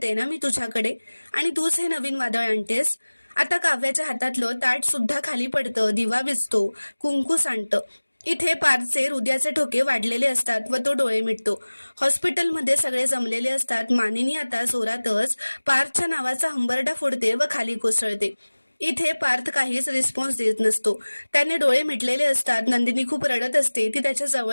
ना मी तुझ्याकडे, आणि तूच हे नवीन वादळ आणतेस. आता काव्याच्या हातातलं ताट सुद्धा खाली पडतं, दिवा विझतो, कुंकू सांडतं. इथे पार्थचे हृदयाचे ठोके वाढलेले असतात व तो डोळे मिटतो. हॉस्पिटलमध्ये सगळे जमलेले असतात. मानिनी आता जोरातच पार्थच्या नावाचा हंबरडा फोडते व खाली कोसळते. इथे पार्थ काहीच रिस्पॉन्स देत नसतो. त्याने डोळे मिटलेले असतात. नंदिनी खूप रडत असते. ती त्याच्या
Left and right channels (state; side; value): inverted; both; correlation -1.00